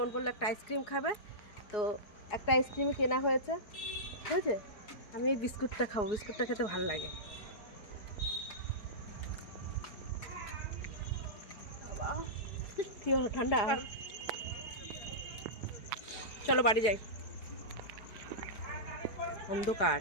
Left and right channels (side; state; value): right; late; 4.8 ms